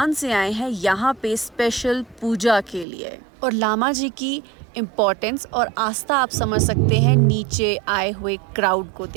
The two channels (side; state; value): left; drops out; at 2.9 s